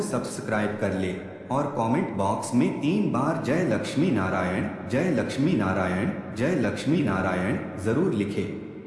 सब्सक्राइब कर ले और कमेंट बॉक्स में 3 बार जय लक्ष्मी नारायण, जय लक्ष्मी नारायण, जय लक्ष्मी नारायण जरूर लिखें।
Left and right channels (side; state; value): both; identical; correlation 1.00